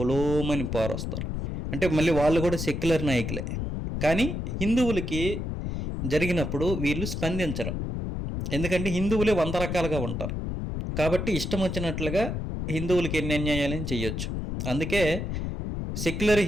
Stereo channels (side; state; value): left; noise; rumble, 3 dB below the sound